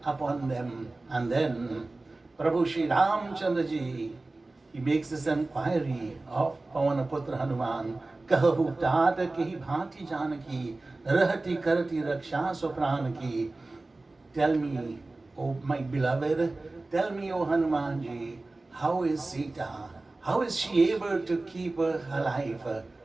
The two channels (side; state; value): left; quieter; 3.1 dB